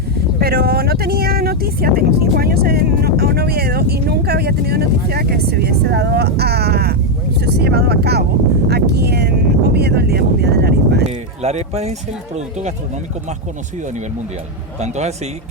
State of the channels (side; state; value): both; normal; correlation 0.03